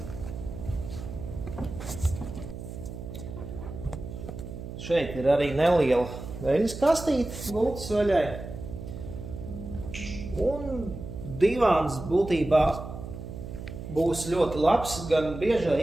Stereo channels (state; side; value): noise; right; hum, 10 dB below the sound